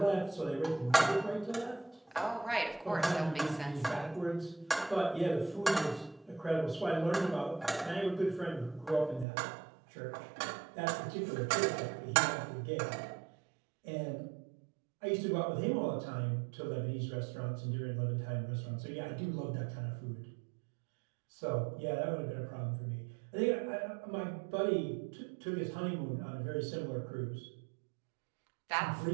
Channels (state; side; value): drops out; left; at 9.2 s